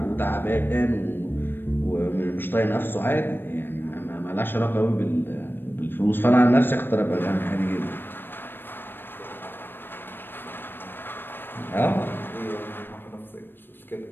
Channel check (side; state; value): right; late; 0.097 ms